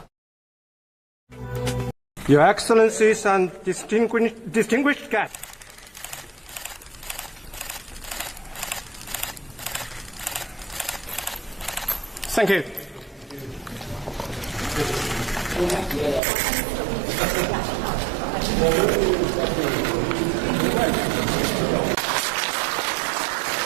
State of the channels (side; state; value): left; drops out; at 16.2 s